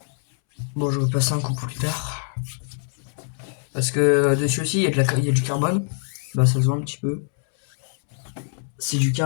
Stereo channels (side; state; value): right; silent; 63 dB below the other